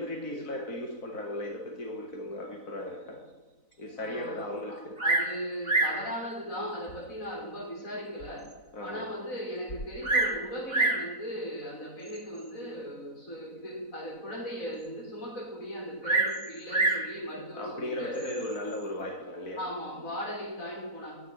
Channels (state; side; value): late; right; 4.0 ms